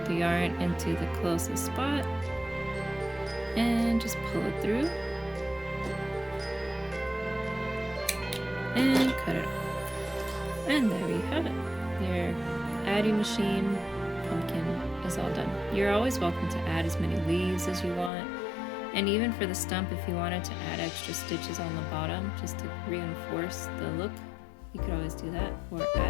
the yarn into the closest spot and just pull it through and cut it off. And there you have it. Your Addi Machine pumpkin is all done. You're always welcome to add as many leaves as you want. And even for the stump, if you wanted to add extra stitches on the bottom just to reinforce the look, you could always do that, or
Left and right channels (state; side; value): drops out; right; at 18.1 s